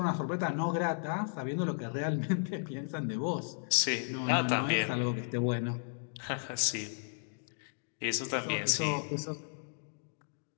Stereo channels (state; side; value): silent; right; digital silence